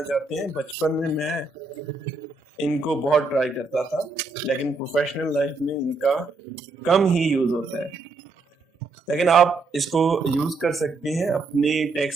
चाहते हैं, बचपन में मैं इनको बहुत ट्राई करता था, लेकिन प्रोफेशनल लाइफ में इनका कम ही यूज होता है। लेकिन आप इसको यूज कर सकते हैं अपने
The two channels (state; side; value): quieter; left; 3.9 dB